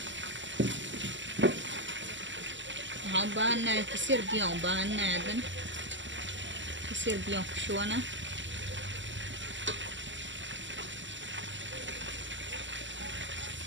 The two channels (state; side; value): late; left; 0.54 ms